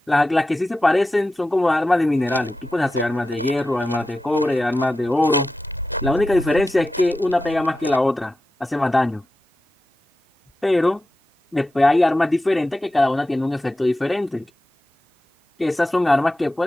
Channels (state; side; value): normal; both; correlation 0.92